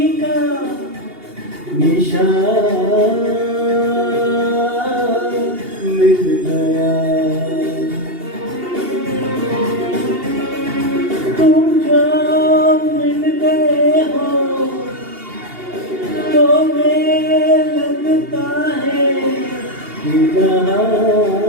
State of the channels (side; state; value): left; late; 2.8 ms